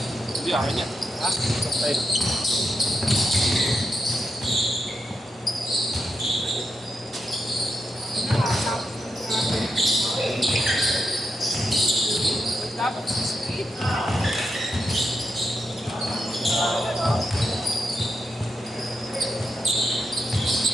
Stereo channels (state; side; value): normal; both; correlation 0.85